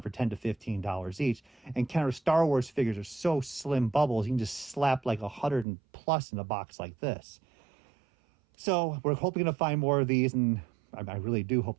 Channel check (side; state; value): left; drops out; at 5.7 s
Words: for $10 to $15 each. And counter Star Wars figures are so slim bubbles, you can just slap like 100 and plus in a box like this. So we're hoping to find more of these, and I really do hope